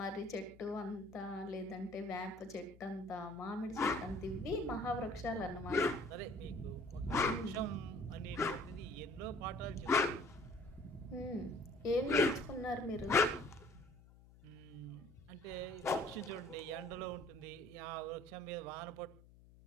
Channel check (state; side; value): noise; left; hum, 22 dB below the sound